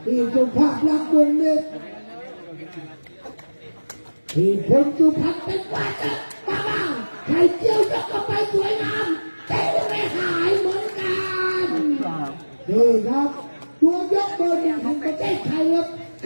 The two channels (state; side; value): inverted; both; correlation -1.00